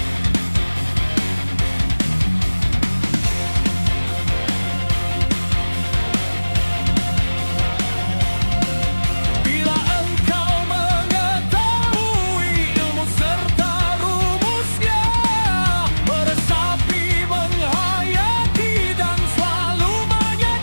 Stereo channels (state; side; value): inverted; both; correlation -1.00